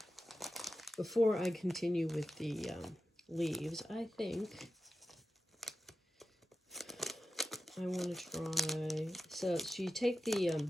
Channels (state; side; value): normal; both; correlation 0.91